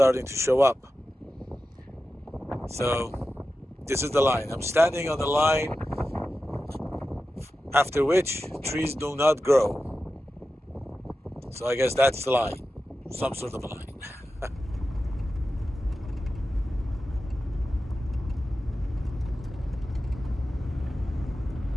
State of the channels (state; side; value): normal; both; correlation 0.93